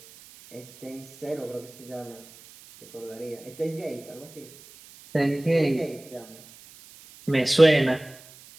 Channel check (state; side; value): noise; right; hiss, 21 dB below the sound